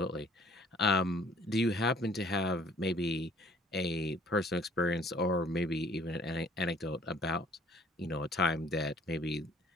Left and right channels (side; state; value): both; normal; correlation 0.56